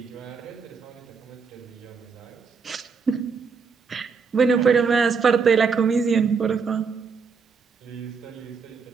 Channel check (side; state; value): left; quieter; 5.4 dB